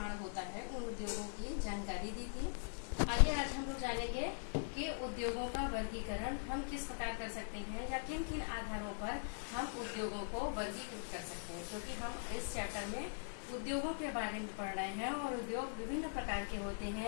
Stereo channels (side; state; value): right; silent; 50 dB below the other